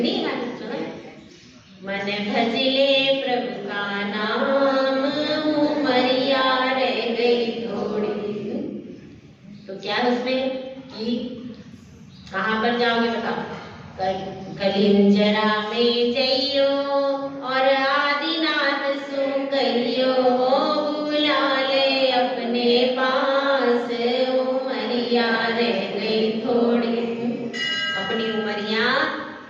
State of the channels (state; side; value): identical; both; correlation 1.00